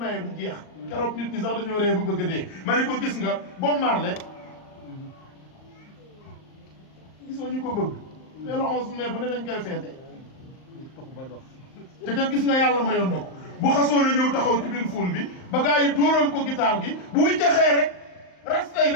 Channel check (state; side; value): late; right; 38 ms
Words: du jeex keroog nit ñi sax dañoo ree ba bëgg a dee ma ne ko gis nga Bob Marley gisoo ñu ko bëgg mais le 11 mai ba ne dañ koy feete te kat gis nga yàlla mayoon na ko bu xasoo na ñëw taxaw ci biir ful bi ba gars yi dóoral ko guitare gi bu wiccaxee rek rastay